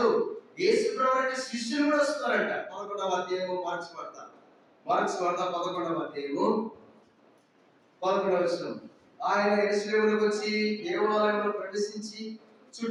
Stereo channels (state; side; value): identical; both; correlation 1.00